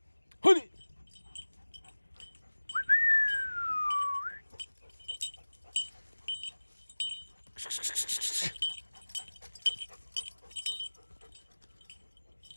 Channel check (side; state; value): both; inverted; correlation -1.00